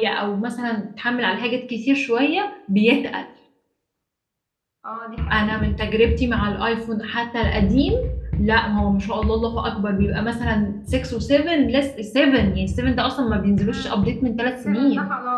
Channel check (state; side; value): identical; both; correlation 1.00